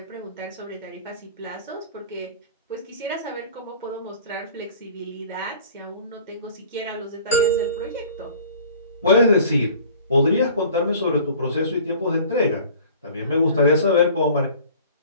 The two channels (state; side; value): inverted; both; correlation -0.47